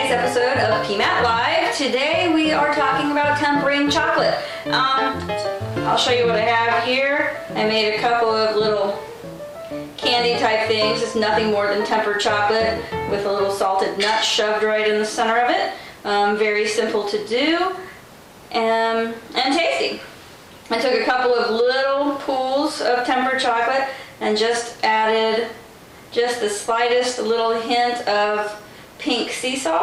episode of PMAT Live. Today we are talking about tempering chocolate. I'll show you what I have here. I made a couple of little candy type things. It's nothing more than tempered chocolate with a little salted nut shoved right in the center of it. Very simple to do and tasty. I took a couple of little pools of tempered chocolate and just added just the slightest little hint of pink sea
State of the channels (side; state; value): both; identical; correlation 1.00